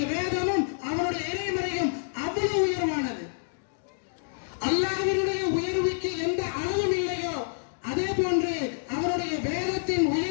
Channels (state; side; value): silent; right; digital silence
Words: வேதமும், அவனுடைய இறைமறையும் அவ்வளவு உயர்வானது. அல்லாஹ்வினுடைய உயர்வுக்கு எந்த அளவும் இல்லையோ, அதே போன்று அவருடைய வேதத்தின்